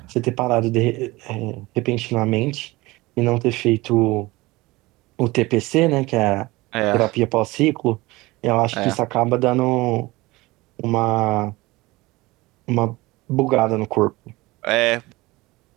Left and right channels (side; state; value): left; quieter; 21.2 dB